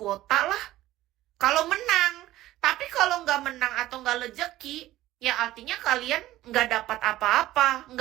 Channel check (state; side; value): quieter; left; 15.6 dB